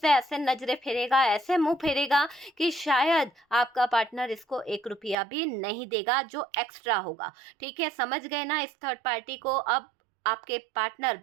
ऐसे नजरें फेरेगा, ऐसे मुंह फेरेगा कि शायद आपका पार्टनर इसको 1 रुपया भी नहीं देगा जो एक्स्ट्रा होगा। ठीक है, समझ गए ना इस थर्ड पार्टी को। अब आपके पार्टनर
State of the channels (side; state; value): left; drops out; at 5.2 s